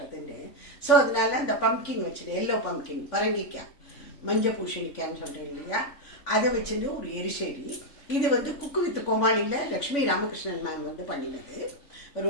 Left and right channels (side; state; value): right; late; 3.5 ms